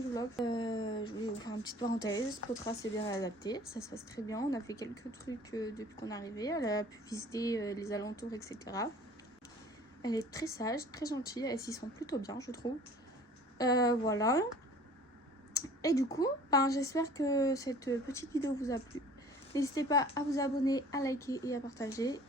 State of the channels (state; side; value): normal; both; correlation 0.48